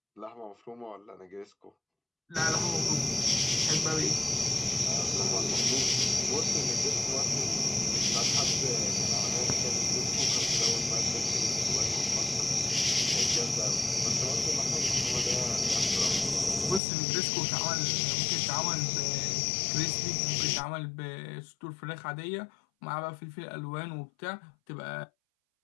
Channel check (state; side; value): drops out; right; at 16.8 s